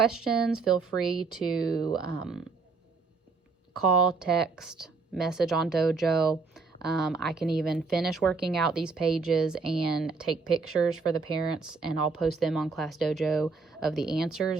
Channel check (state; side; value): quieter; left; 4.4 dB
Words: feel free to call, text, message on Dojo. I can even finish working out these pages and take pictures for the parents, and I'll post them on Class Dojo of the